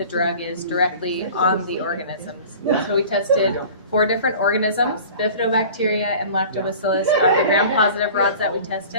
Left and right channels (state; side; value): inverted; both; correlation -0.42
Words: drug is directly on the organisms. So we tested 4 different organisms. Bifidobacteria and lactobacillus are the gram-positive rods that we